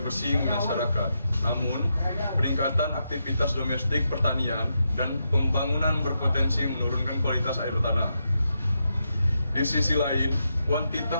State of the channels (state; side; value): inverted; both; correlation -0.84